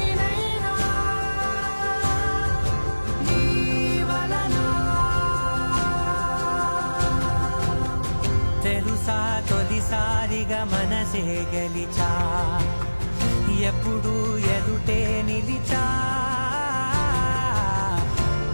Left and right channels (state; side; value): inverted; both; correlation -1.00